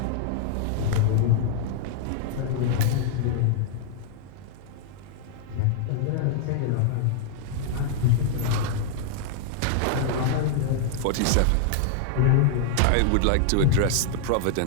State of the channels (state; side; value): different; both; correlation -0.01